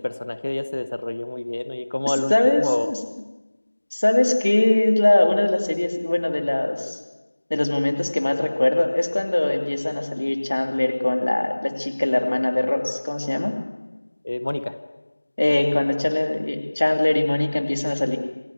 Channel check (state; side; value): inverted; both; correlation -1.00